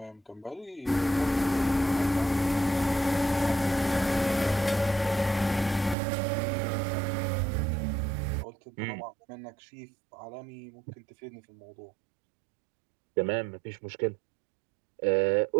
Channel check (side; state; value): left; drops out; at 6.0 s